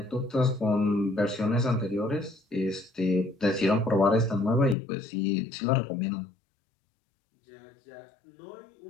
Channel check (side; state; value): right; drops out; at 4.8 s